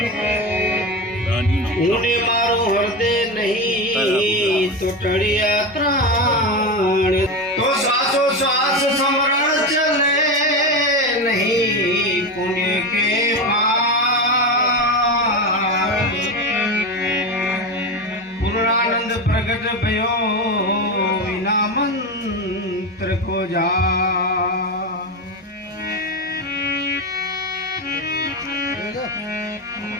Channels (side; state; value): both; normal; correlation 0.18